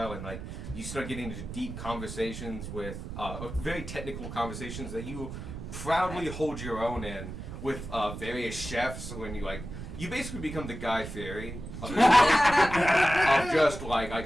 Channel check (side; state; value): right; noise; rumble, 9 dB below the sound